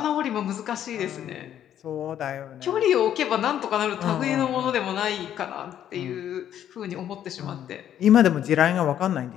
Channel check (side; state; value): right; quieter; 10.5 dB